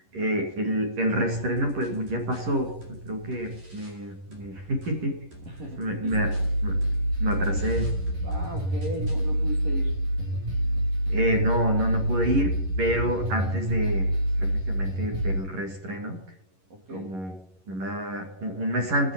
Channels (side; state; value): left; late; 11 ms